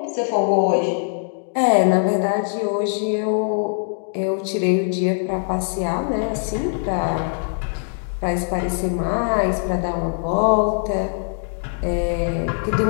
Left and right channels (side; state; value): right; silent; 62 dB below the other